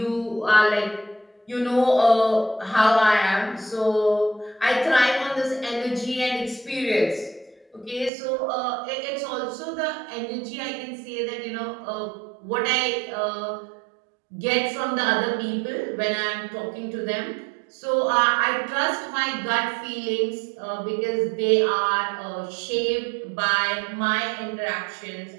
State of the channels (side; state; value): left; drops out; at 8.1 s